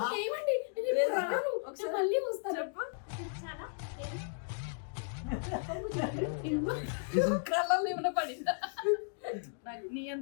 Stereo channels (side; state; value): right; silent; digital silence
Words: ఏమండి ఒకసారి మళ్ళీ వస్తాను. కళ్ళల్లో ఏమైనా పడిందా? నీ